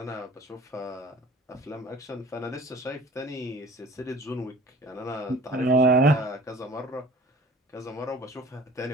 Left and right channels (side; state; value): both; normal; correlation 0.46